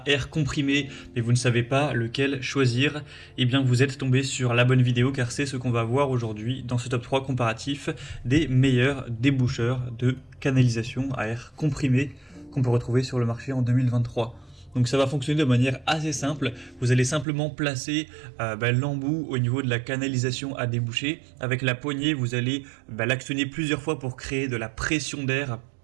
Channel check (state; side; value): drops out; left; at 17.2 s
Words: air comprimé, mais vous ne savez pas lequel choisir. Eh bien, vous êtes tombé sur la bonne vidéo car c'est ce qu'on va voir aujourd'hui dans ce top 3 comparatif des meilleurs déboucheurs de canalisation à air comprimé qu'on peut retrouver sur le marché en 2023. Donc ça va fonctionner de manière assez simple. Vous allez simplement placer l'embout au niveau de la canalisation à déboucher. Avec la poignée, vous allez l'actionner plusieurs fois pour créer de la pression d'air